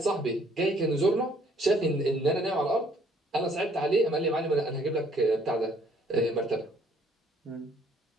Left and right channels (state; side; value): normal; both; correlation 0.62